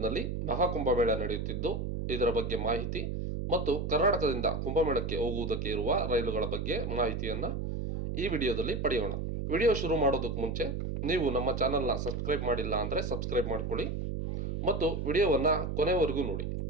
ಮಹಾಕುಂಭಮೇಳ ನಡೆಯುತ್ತಿದ್ದು, ಇದರ ಬಗ್ಗೆ ಮಾಹಿತಿ ಮತ್ತು ಕರ್ನಾಟಕದಿಂದ ಕುಂಭಮೇಳಕ್ಕೆ ಹೋಗುವುದಕ್ಕೆ ಇರುವ ರೈಲುಗಳ ಬಗ್ಗೆ ಮಾಹಿತಿಯನ್ನ ಈ ವಿಡಿಯೋದಲ್ಲಿ ಪಡೆಯೋಣ. ವಿಡಿಯೋ ಶುರು ಮಾಡೋದಕ್ಕೆ ಮುಂಚೆ ನೀವು ನಮ್ಮ ಚಾನಲ್ನ ಸಬ್ಸ್ಕ್ರೈಬ್ ಮಾಡಿಲ್ಲ ಅಂದರೆ ಸಬ್ಸ್ಕ್ರೈಬ್ ಮಾಡ್ಕೊಳ್ಳಿ ಮತ್ತು ವಿಡಿಯೋವನ್ನ ಕೊನೆವರೆಗೂ ನೋಡಿ.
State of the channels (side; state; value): right; noise; hum, 3 dB below the sound